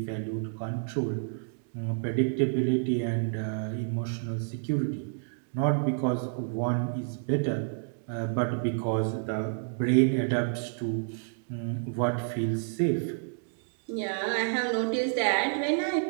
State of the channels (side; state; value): left; silent; digital silence